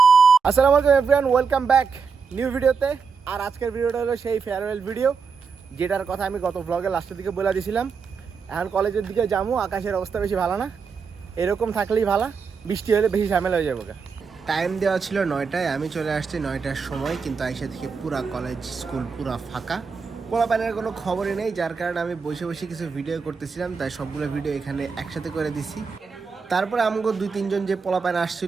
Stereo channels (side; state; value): left; quieter; 5.5 dB